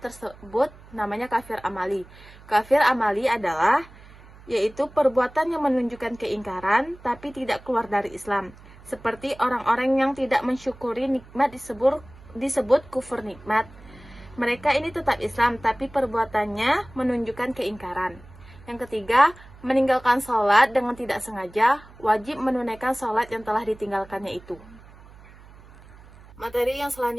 namanya kafir amali. Kafir amali adalah yaitu perbuatan yang menunjukkan keingkaran tapi tidak keluar dari Islam. Seperti orang-orang yang tidak mensyukuri nikmat disebut kufur nikmat. Mereka ini tetap Islam, tapi perbuatannya menunjukkan keingkaran. Yang ketiga, meninggalkan sholat dengan tidak sengaja, wajib menunaikan sholat yang telah ditinggalkannya itu. Materi yang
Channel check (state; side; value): noise; right; hum, 22 dB below the sound